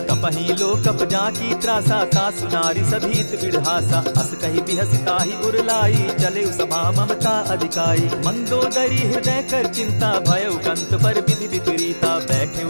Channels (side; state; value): both; inverted; correlation -1.00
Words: कपहि लो कप जाकी त्रासा, तासु नारी सभीत बिढ़ासा। अस कहि बिहसिता ही उरलाई, चले सभा ममता अधिकाई। मंदोदरी हृदय कर चिंता, भयउ कंत पर विधि विपरीता।